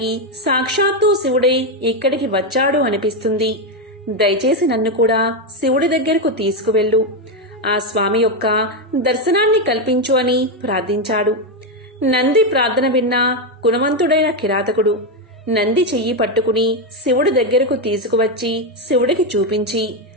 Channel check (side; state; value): both; normal; correlation 0.07